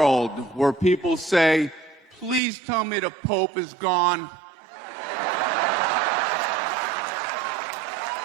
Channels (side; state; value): left; drops out; at 2.4 s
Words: where people say, please tell me the Pope is gone.